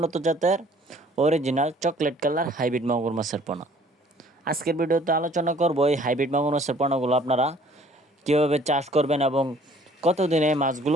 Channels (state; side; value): normal; both; correlation 0.56